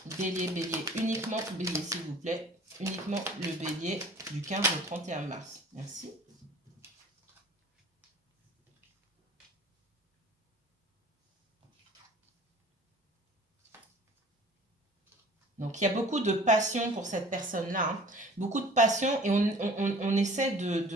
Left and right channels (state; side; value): normal; both; correlation 0.47